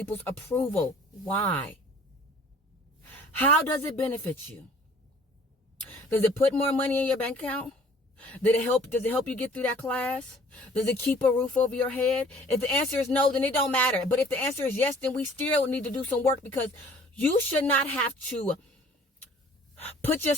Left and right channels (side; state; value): both; normal; correlation 0.53